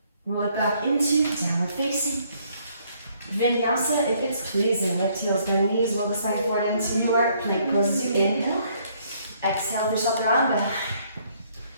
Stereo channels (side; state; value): both; inverted; correlation -0.67